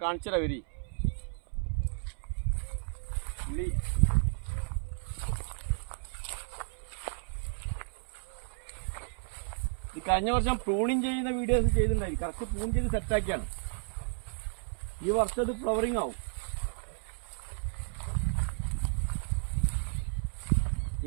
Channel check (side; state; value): left; silent; 56 dB below the other